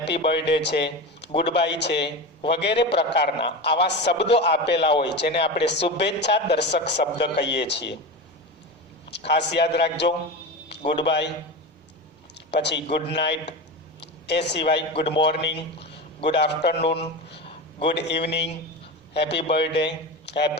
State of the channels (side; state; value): both; normal; correlation 0.24